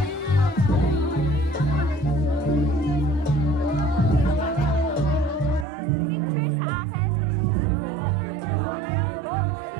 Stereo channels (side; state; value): left; drops out; at 5.7 s